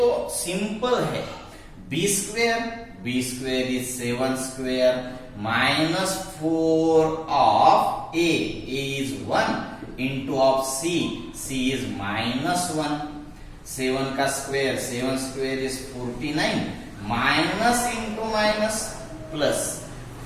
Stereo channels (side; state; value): both; identical; correlation 1.00